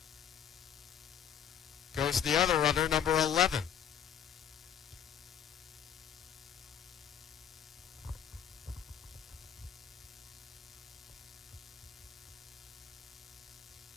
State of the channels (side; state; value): right; quieter; 8.7 dB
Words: goes the other runner, number 11.